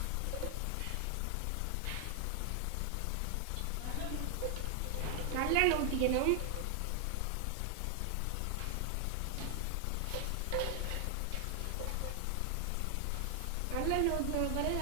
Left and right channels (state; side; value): different; both; correlation 0.00